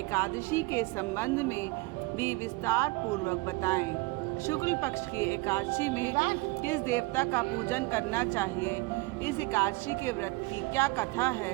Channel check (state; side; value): quieter; left; 24.3 dB